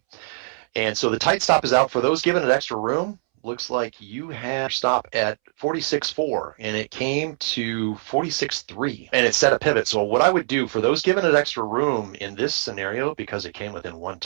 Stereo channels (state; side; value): silent; left; 63 dB below the other